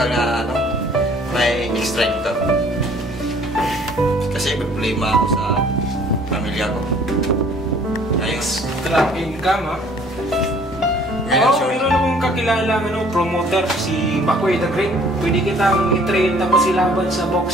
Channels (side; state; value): both; normal; correlation 0.56